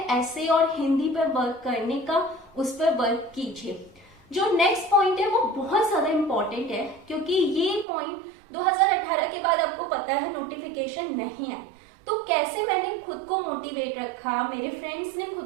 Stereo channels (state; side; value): drops out; left; at 7.9 s